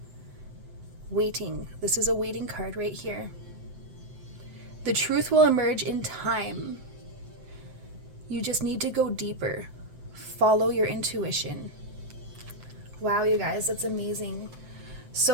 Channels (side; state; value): left; late; 7.8 ms